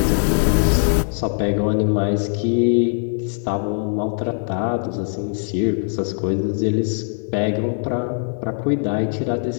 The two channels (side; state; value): right; silent; digital silence